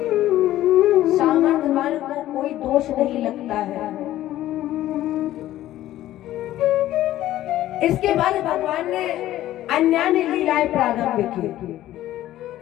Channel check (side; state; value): right; quieter; 14.0 dB